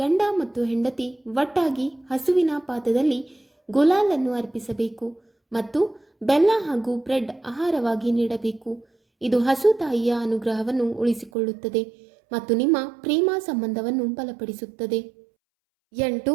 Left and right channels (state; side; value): drops out; left; at 11.3 s